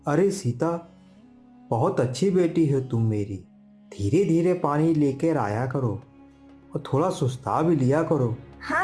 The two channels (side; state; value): both; identical; correlation 1.00